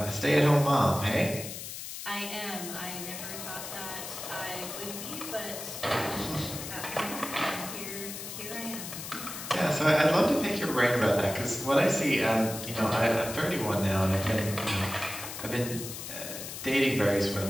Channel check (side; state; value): left; noise; hiss, 9 dB below the sound